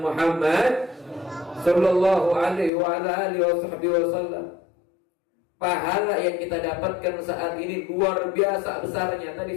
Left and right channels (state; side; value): drops out; right; at 2.7 s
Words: Muhammad sallallahu alaihi wa ala alihi wasallam. Pahala yang kita dapatkan saat ini luar biasa besarnya. Tadi